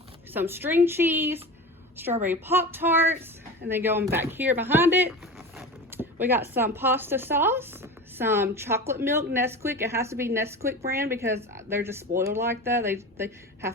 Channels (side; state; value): both; normal; correlation 0.30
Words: some string cheese, strawberry Pop-Tarts, and then going back here behind it, we got some pasta sauce, some chocolate milk Nesquik. It has to be Nesquik brand because they're just spoiled like that. They have